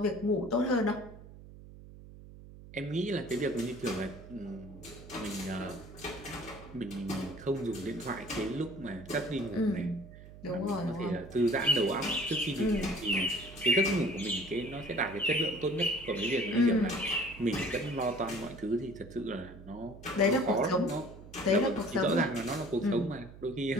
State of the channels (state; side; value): noise; right; hum, 17 dB below the sound